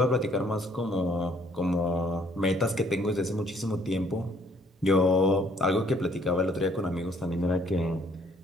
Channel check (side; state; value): both; normal; correlation 0.63